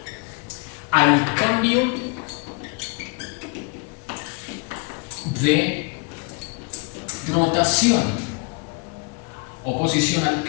al cambio de rotación. Oposición al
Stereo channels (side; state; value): right; quieter; 31.6 dB